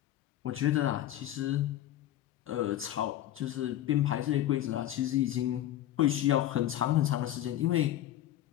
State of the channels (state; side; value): quieter; right; 12.9 dB